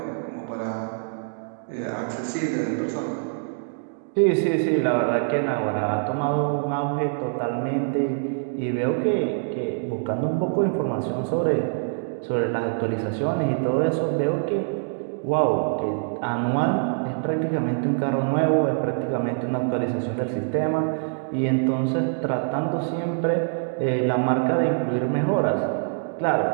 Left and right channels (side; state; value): left; silent; digital silence